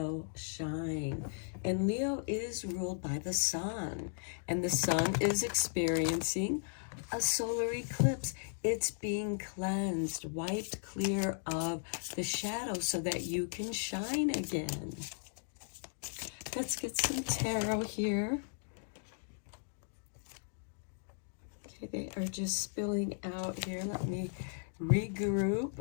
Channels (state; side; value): silent; right; digital silence